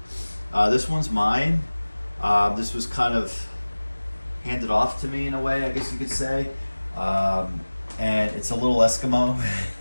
This one's mine. This was kind of handed off to me in a way, I guess you could say. And it's a little Eskimo,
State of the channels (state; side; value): inverted; both; correlation -1.00